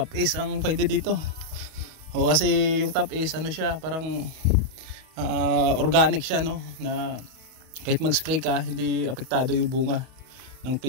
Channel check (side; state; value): left; late; 31 ms